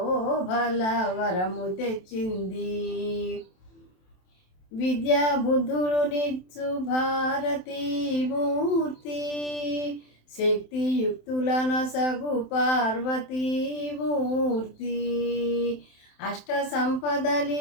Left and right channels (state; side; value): late; right; 27 ms